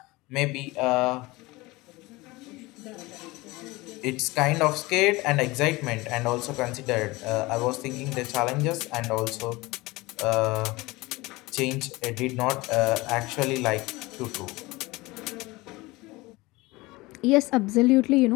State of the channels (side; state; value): right; quieter; 21.8 dB